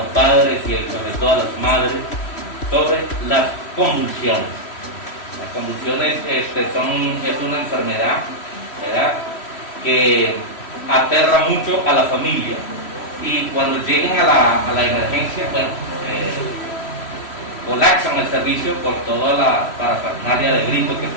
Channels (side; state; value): right; late; 3.1 ms